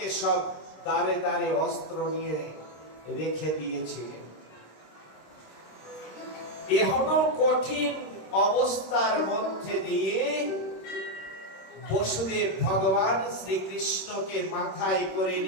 সব দাঁড়ে দাঁড়ে অস্ত্র নিয়ে রেখে দিয়েছিলেন। এখনো কঠিন অবস্থার মধ্যে দিয়ে বসুদেব ভগবান শ্রীকৃষ্ণকে মাথায় করে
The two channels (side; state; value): right; late; 26 ms